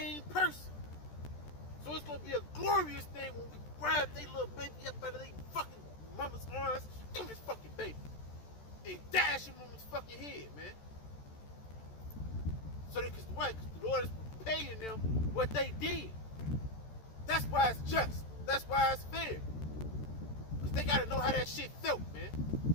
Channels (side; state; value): right; late; 14 ms